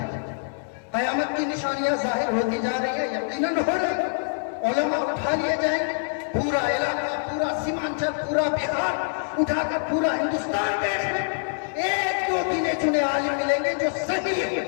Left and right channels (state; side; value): silent; right; digital silence